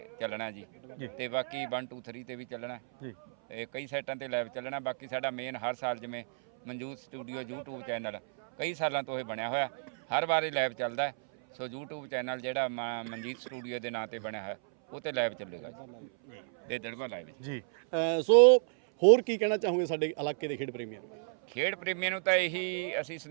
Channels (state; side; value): silent; left; 56 dB below the other